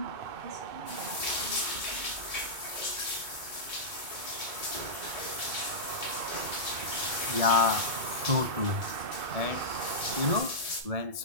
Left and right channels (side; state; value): left; late; 2.3 ms